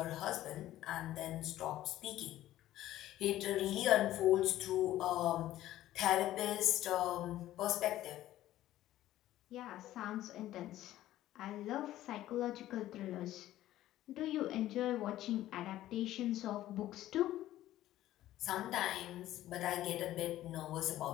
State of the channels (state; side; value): quieter; right; 14.1 dB